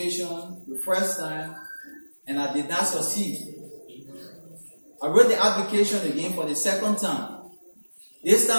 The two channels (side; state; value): both; inverted; correlation -1.00